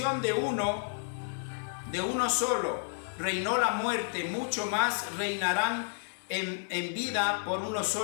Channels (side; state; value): right; silent; digital silence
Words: de uno solo reinó la muerte, mucho más reinarán en vida por uno